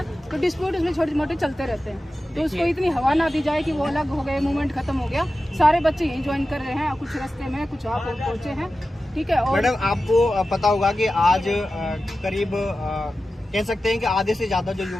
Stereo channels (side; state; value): both; normal; correlation 0.94